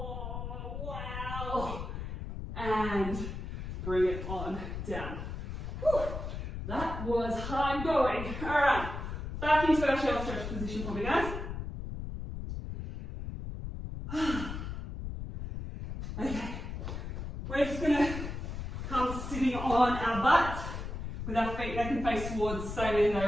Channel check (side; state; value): left; noise; rumble, 6 dB below the sound